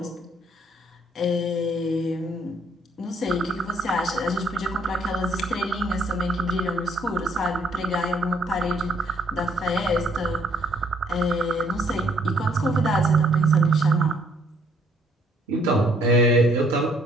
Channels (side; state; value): both; normal; correlation 0.65